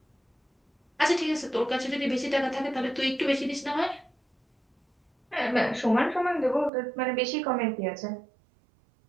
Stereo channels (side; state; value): left; drops out; at 6.7 s